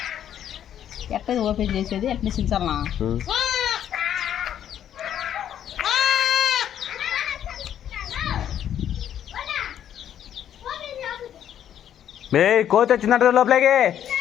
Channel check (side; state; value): right; quieter; 10.1 dB